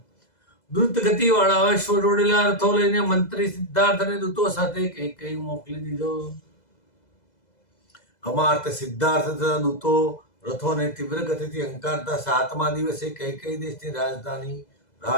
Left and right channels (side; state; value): right; late; 2.0 ms